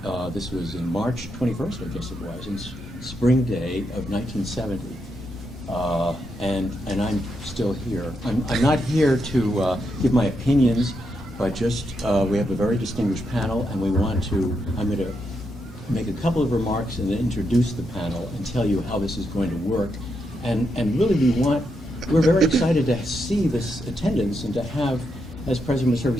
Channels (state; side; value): normal; both; correlation 0.82